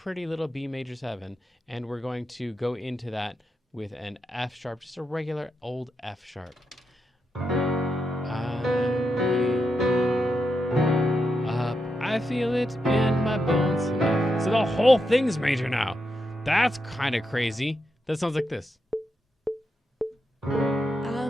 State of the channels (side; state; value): both; normal; correlation 0.85